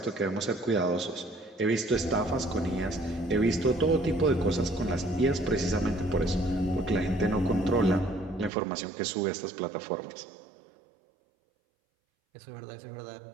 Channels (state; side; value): drops out; left; at 8.5 s